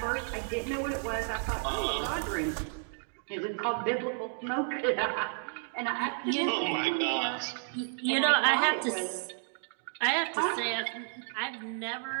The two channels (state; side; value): silent; left; digital silence